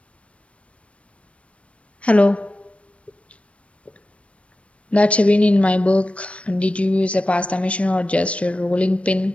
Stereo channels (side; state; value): right; late; 0.062 ms